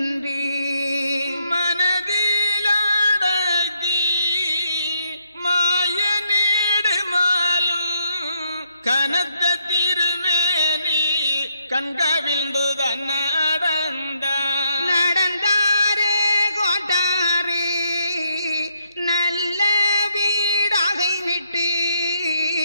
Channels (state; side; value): inverted; both; correlation -0.75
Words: மனதிலாடகி மாய நீடு மாலும் கனத்த திருமேனி கண்கவிழ்ந்துதான் நடந்தாரே கோட்டாரே நல்ல வீடாகை விட்டு